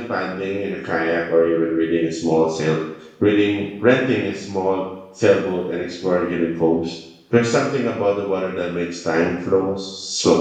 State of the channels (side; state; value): both; identical; correlation 1.00